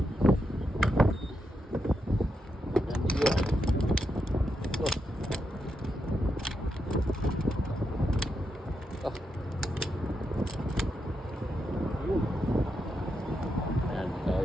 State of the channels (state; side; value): normal; both; correlation 0.84